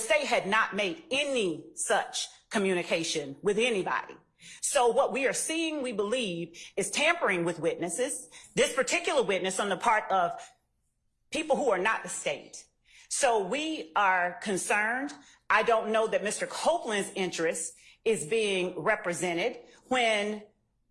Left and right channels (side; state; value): both; identical; correlation 1.00